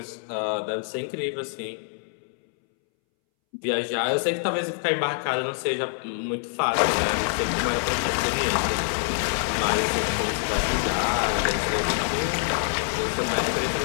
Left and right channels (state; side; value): silent; right; 61 dB below the other